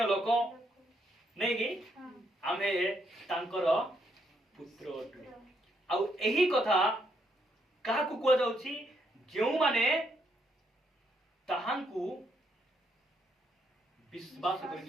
लोक नहीं कि आमे तांकर पुत्र अटु आउ एही कथा काहाकू को जाउछि जेउ माने ताहांकू विश्वास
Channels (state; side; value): normal; both; correlation 0.74